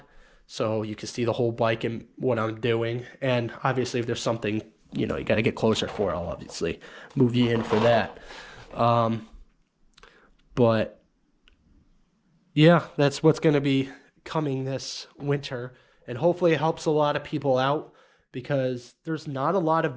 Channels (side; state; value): both; identical; correlation 1.00